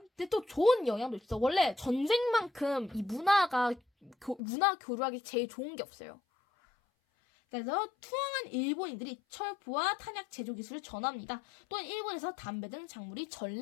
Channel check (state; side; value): drops out; right; at 4.4 s